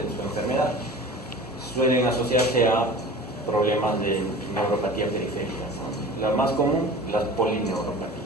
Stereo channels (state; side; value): normal; both; correlation 0.39